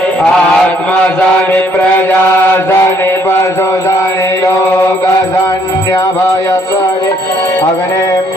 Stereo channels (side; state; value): both; normal; correlation 0.66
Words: आत्मा जाने प्रजा जाने पशु जाने लोक जान्य भय करे अग्नि